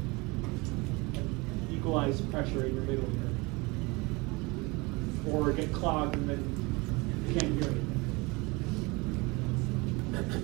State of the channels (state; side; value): quieter; left; 25.6 dB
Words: equalize pressure in your middle ear. Or get clogged and then you can't hear anything.